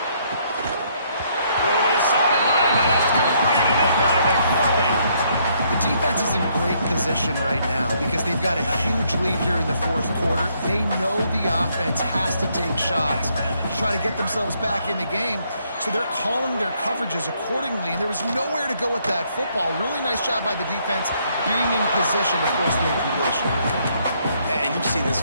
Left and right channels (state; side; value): inverted; both; correlation -0.70